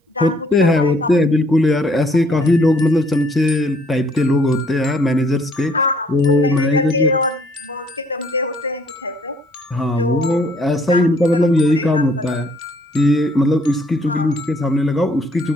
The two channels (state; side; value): normal; both; correlation 0.63